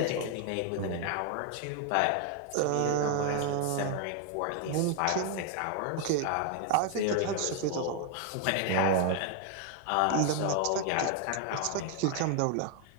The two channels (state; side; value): different; both; correlation 0.01